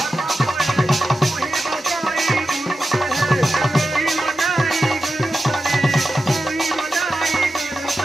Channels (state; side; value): normal; both; correlation 0.91